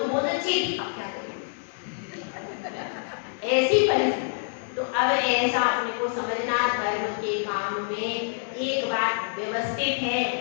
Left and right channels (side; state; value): right; silent; digital silence